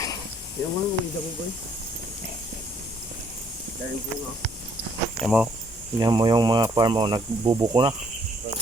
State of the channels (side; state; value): both; normal; correlation 0.66